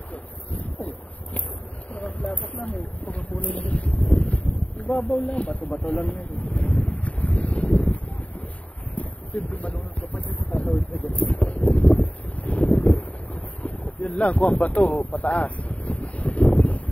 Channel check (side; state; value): right; late; 0.066 ms